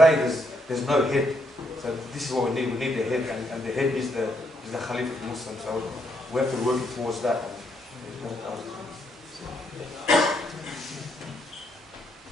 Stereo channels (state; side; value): normal; both; correlation 0.75